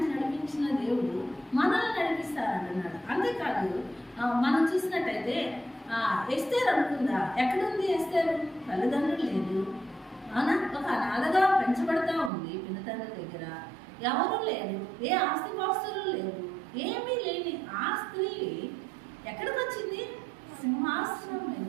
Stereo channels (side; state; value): left; drops out; at 12.3 s